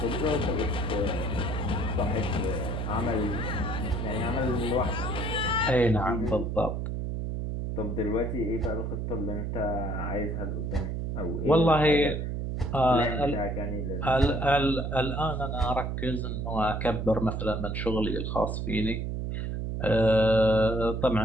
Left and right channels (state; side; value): noise; right; hum, 2 dB below the sound